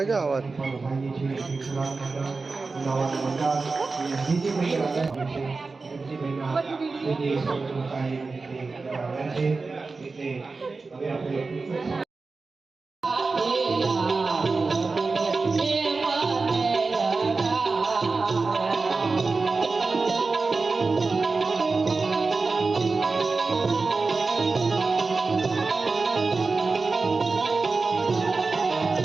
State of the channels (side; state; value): left; quieter; 4.0 dB